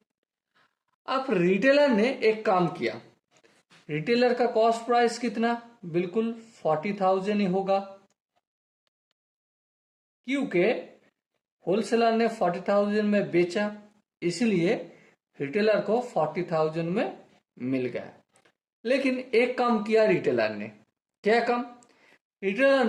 अब रिटेलर ने एक काम किया। रिटेलर का कॉस्ट प्राइस कितना? बिल्कुल 40,000 ही होगा, क्योंकि होलसेलर ने 40,000 में बेचा, इसलिए रिटेलर को 40,000 में मिल गया। लेकिन एक काम किया रिटेलर ने। क्या काम? रिटेलर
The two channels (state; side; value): identical; both; correlation 1.00